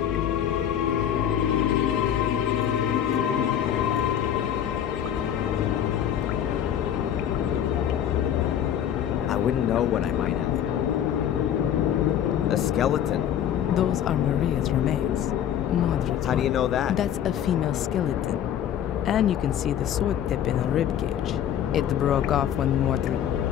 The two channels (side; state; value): right; quieter; 9.9 dB